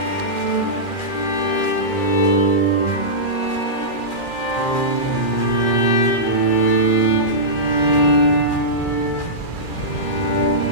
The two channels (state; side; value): late; right; 2.4 ms